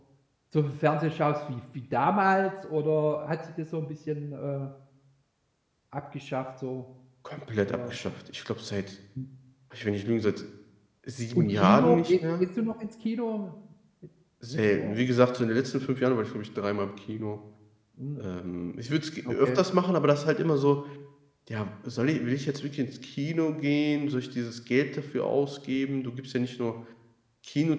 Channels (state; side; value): identical; both; correlation 1.00